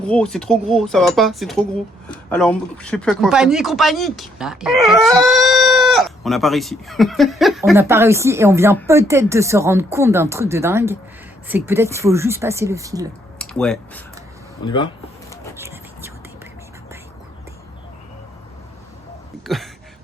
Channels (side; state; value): both; normal; correlation 0.70